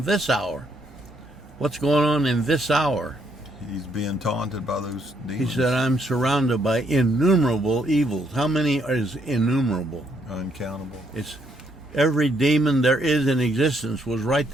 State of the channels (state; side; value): normal; both; correlation 0.72